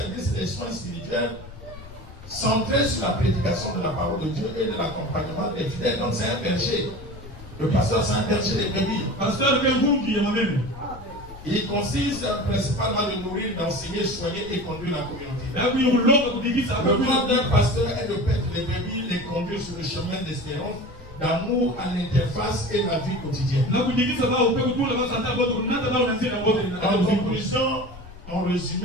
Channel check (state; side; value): noise; left; rumble, 17 dB below the sound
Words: des soins spirituels centré sur la prédication de la parole de Dieu et de l'accompagnement des fidèles. Donc c'est un berger. Le pasteur, c'est un berger des brebis. Pasteur, qui est moi-même. Il consiste principalement de nourrir, d'enseigner, soigner et conduire la communauté. Le rôle d'un pasteur est de paître les brebis, les conduire sur le chemin d'espérance, d'amour à l'interface et la vie quotidienne. En conclusion, en